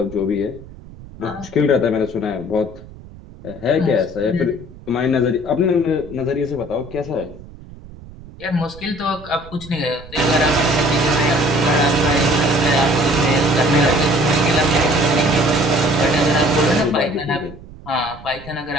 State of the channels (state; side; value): noise; right; rumble, 18 dB below the sound